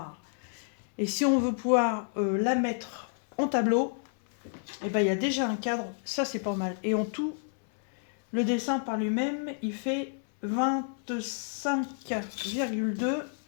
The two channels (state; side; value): silent; right; 58 dB below the other